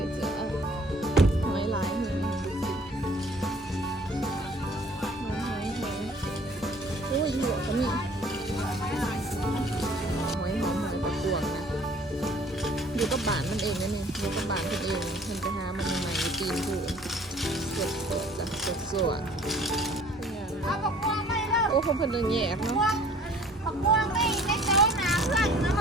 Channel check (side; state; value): both; normal; correlation 0.53